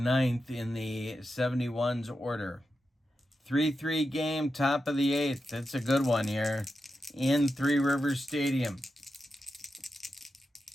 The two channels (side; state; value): both; normal; correlation 0.89